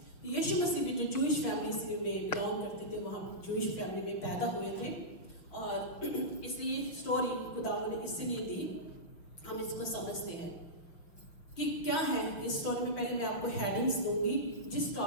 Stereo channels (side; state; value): right; late; 6.2 ms